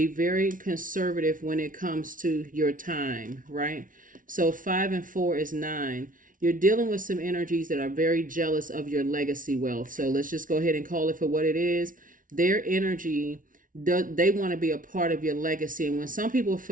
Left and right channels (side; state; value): left; late; 0.38 ms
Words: very conservative when it comes to your time, right? So 5 and 4 is 9. You're dealing with some energies that are very jealous of your legacy wealth. So let's just go ahead and call it for what it is. Their energy, they want to be a part of your legacy. And when some people